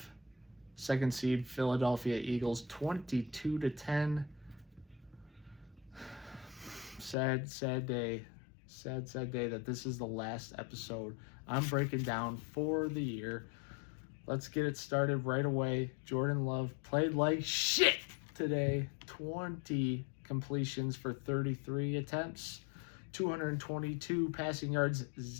second seed Philadelphia Eagles, 22-10. Sad day. Sad day that this is the last episode I'm breaking down for the year. Let's get it started right away. Jordan Love played like shit today. 20 completions for 33 attempts, 222 passing yards,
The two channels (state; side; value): drops out; right; at 7.2 s